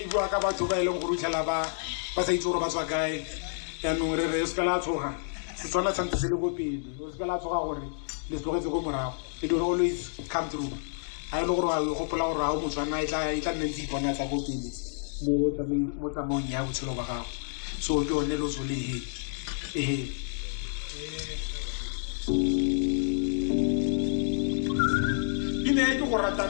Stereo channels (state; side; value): silent; right; digital silence